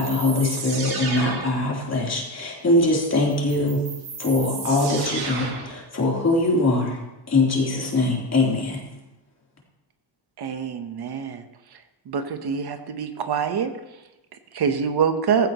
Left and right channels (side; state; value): both; normal; correlation 0.15